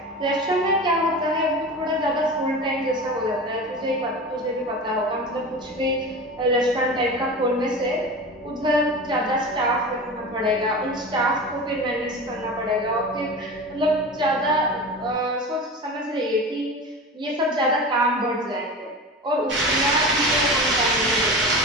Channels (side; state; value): both; normal; correlation 0.30